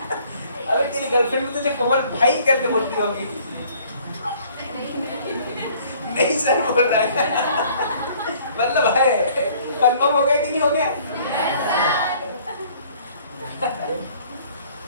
अबे तेरी गर्लफ्रेंड भी तुझे कोमल भाई करके बोलती होगी, नहीं सर बोल रहा है, मतलब है, कंफर्म हो गया कि नहीं हो गया,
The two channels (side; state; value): both; inverted; correlation -0.56